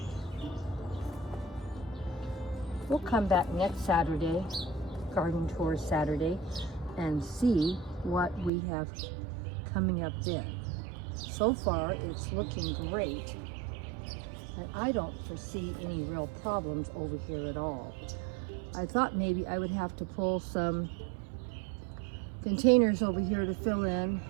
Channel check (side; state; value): left; drops out; at 8.5 s